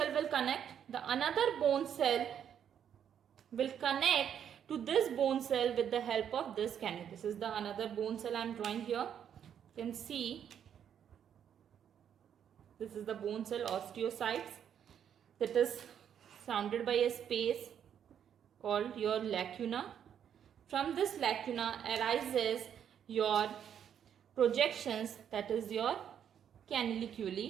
will connect? The another bone cell will connect to this bone cell with the help of this cannula. This is the another bone cell I am drawing here. You can see this is the bone cell osteocytes that is surrounded by a space called your lacuna. From this lacuna arises your projections, that is your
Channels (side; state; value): left; quieter; 8.9 dB